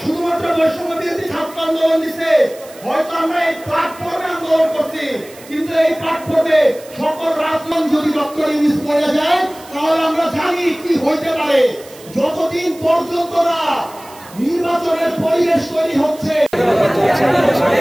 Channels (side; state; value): right; noise; hiss, 21 dB below the sound